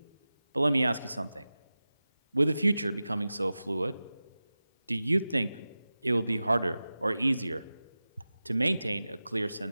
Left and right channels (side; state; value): both; inverted; correlation -0.95